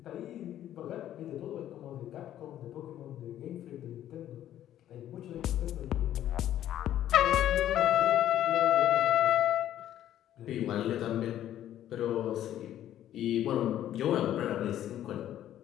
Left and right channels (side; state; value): right; quieter; 11.9 dB